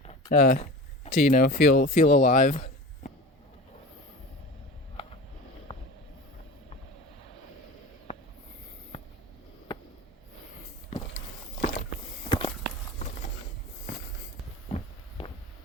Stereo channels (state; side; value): normal; both; correlation 0.33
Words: to feel alive.